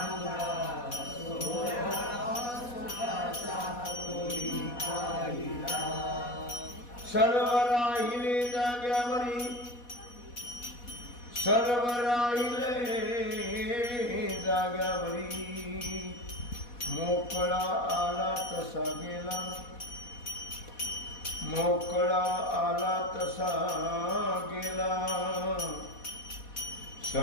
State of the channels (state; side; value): late; right; 4.1 ms